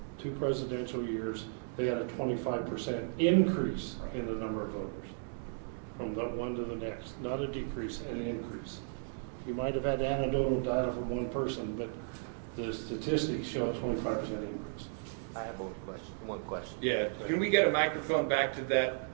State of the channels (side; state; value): left; silent; digital silence